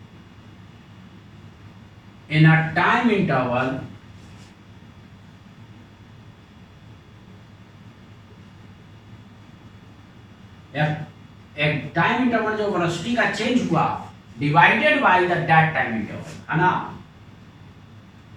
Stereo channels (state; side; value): identical; both; correlation 1.00